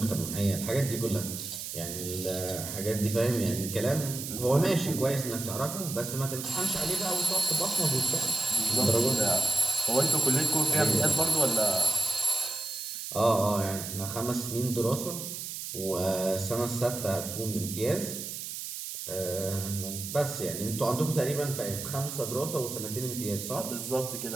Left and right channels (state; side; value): noise; right; hiss, 7 dB below the sound